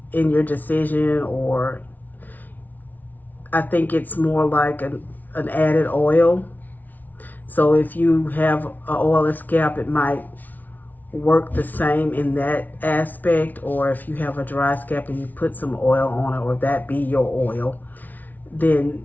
in your decision, or I think it's more like an added oil. So if you have an oily scalp, it might work the same in that aspect. Or if you have a dry scalp and you put some oil on it, or that be your oil, then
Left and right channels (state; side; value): late; right; 0.080 ms